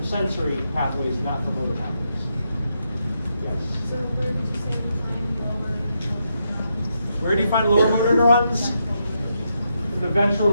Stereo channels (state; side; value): inverted; both; correlation -0.82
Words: sensory pathways, not for motor pathways. Yes? So where would you say you find lower neurons? Where do you find lower motor neurons? In the ventral